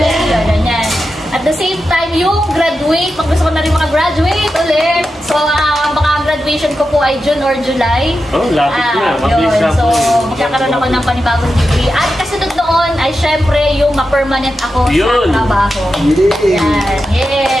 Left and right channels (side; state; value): both; normal; correlation 0.90